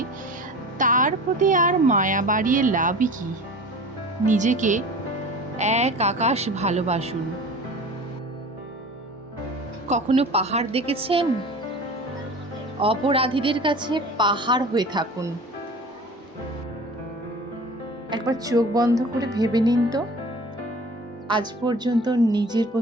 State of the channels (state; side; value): normal; both; correlation 0.39